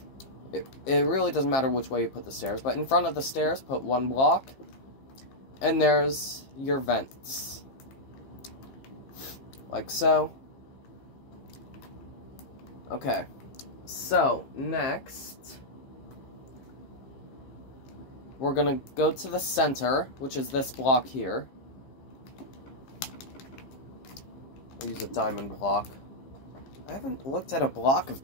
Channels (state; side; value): late; right; 15 ms